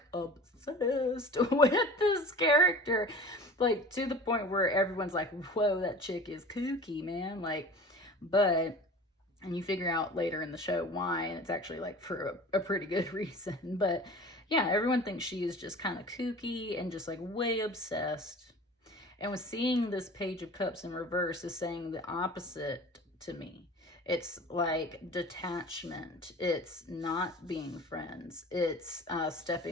obsessed with this character, like to the point where everyone's like, whoa, that chick is kooky, man. Like, and you figure out later in the show why, and it's actually like for a pretty good reason. But yeah, everyone thinks she is just kind of kooky and just like way obsessed. And with seeing this Page of Cups in reverse is saying the opposite to me. It's like detachment. It's not being friends. It's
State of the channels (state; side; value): normal; both; correlation 0.40